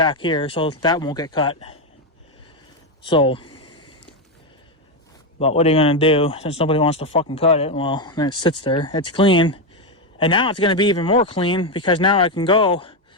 here. So that won't get cut. So, but what are you going to do? Since nobody wants to fucking cut it, well, then it sits there. It's clean. And now it's going to be even more clean because now I can go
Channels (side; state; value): both; normal; correlation 0.07